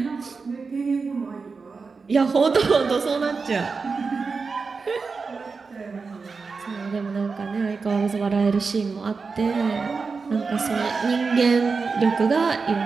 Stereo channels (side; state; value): left; quieter; 4.7 dB